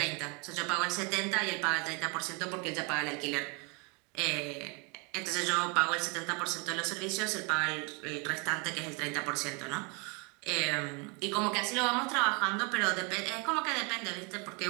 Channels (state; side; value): quieter; left; 31.9 dB